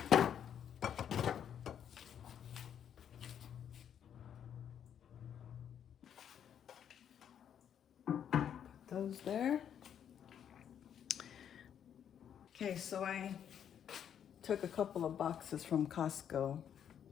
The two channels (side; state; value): right; quieter; 9.0 dB